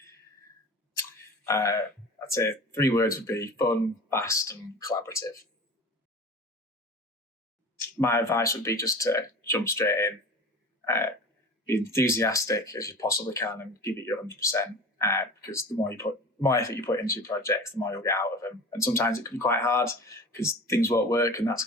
I'd say 3 words would be fun, fast, and collaborative. My advice would be just to jump straight in, be enthusiastic as you possibly can, and give it your 100%. Because the more effort you put into your projects, the more you'll get out of them. And sometimes it can be quite hard because things won't work, and that's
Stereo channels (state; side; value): normal; both; correlation 0.36